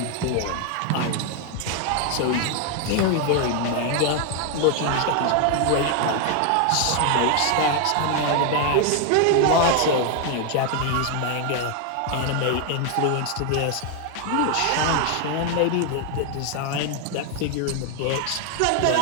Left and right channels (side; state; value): both; different; correlation 0.01